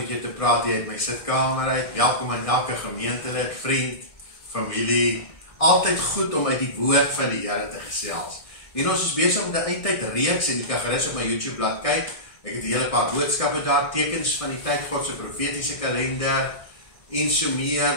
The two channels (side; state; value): right; late; 1.6 ms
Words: jou te praat hier uit my sitkamer uit. Welkom aan elke gemeentelid, vriend, familie. Altyd goed om uit die woord van die Here te gesels. En ons is besig met 'n eindtyd reeks en jy kan gerus op my YouTube bladsy kyk. Ek het 'n hele paar boodskappe daar, tekens van die tyd, God se profetiese kalender en so meer